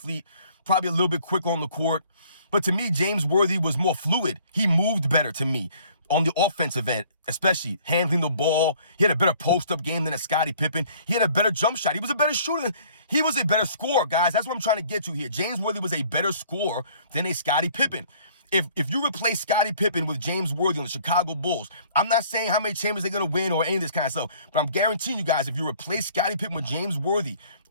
probably a little bit quicker on the court. But to me, James Worthy was more fluid. He moved better to me on the offensive end, especially handling the ball. He had a better post-up game than a Scottie Pippen. He had a better jump shot. He was a better shooter. He was a better scorer, guys. That's what I'm trying to get to here. James Worthy was a better scorer than a Scottie Pippen. If you replace Scottie Pippen with James Worthy on the Chicago Bulls, I'm not saying how many champions they're going to win or any of this kind of stuff, but I'm guaranteeing you guys, if you replace Scottie Pippen with James Worthy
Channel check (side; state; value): both; inverted; correlation -0.56